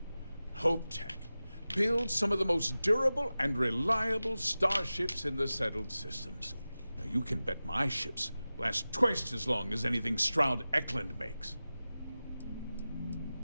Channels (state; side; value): inverted; both; correlation -0.95